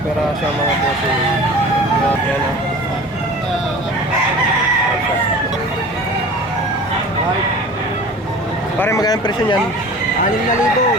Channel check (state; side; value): normal; both; correlation 0.40